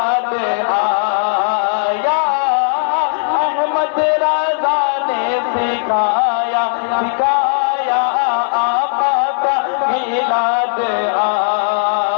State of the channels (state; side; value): silent; right; digital silence